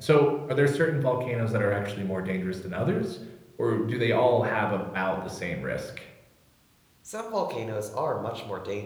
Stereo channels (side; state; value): both; identical; correlation 1.00